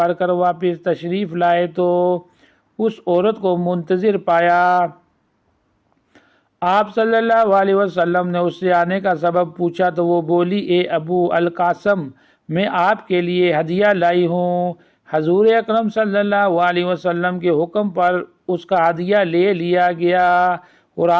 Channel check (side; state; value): both; identical; correlation 1.00